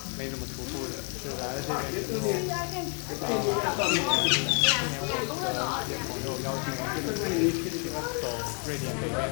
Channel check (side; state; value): right; quieter; 37.4 dB